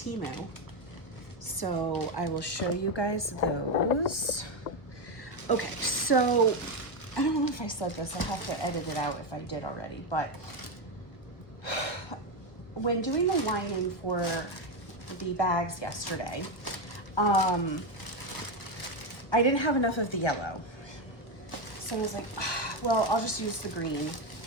So I will show you guys those. Okay, so I don't know if I said this. I'll have to edit it out if I did already, but when doing the lining for the bags yesterday, I didn't have enough of the yellow. So I was like, well, I'll just use the green,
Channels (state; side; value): late; right; 1.1 ms